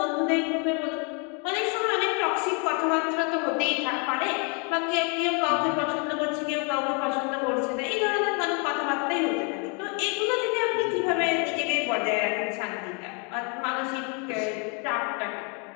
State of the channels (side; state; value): right; quieter; 35.8 dB